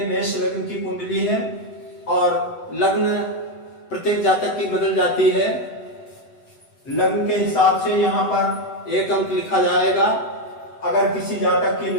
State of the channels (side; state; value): right; late; 7.9 ms